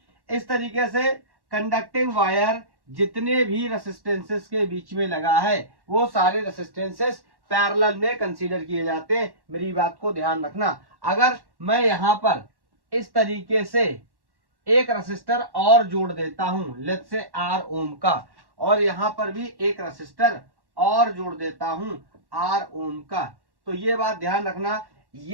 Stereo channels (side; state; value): left; late; 1.1 ms